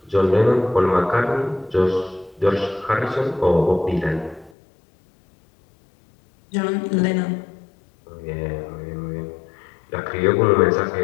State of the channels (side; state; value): right; drops out; at 4.5 s